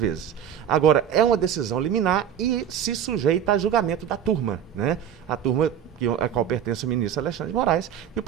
Agora, é uma decisão liminar e se sujeita a julgamento da turma, né? A turma a qual pertence o ministro Alexandre de Moraes, e o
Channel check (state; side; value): quieter; left; 9.3 dB